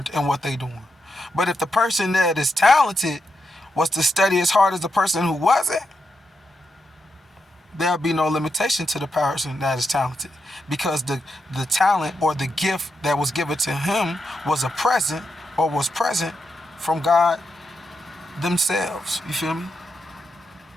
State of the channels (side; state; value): both; normal; correlation 0.84